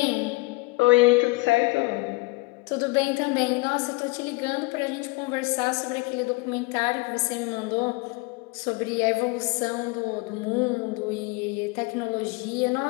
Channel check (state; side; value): quieter; right; 25.0 dB